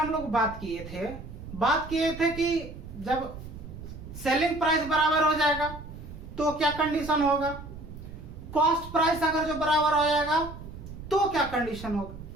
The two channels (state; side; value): noise; right; rumble, 12 dB below the sound